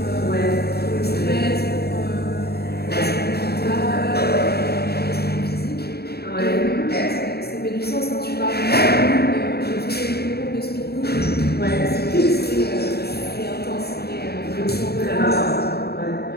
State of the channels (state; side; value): late; right; 0.46 ms